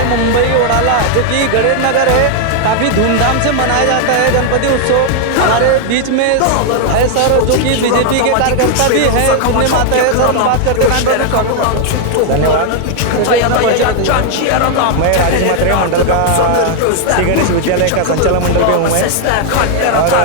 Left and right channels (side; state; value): both; different; correlation 0.00